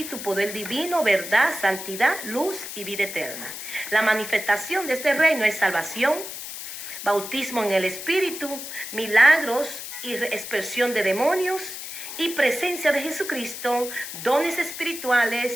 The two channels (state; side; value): noise; left; hiss, 9 dB below the sound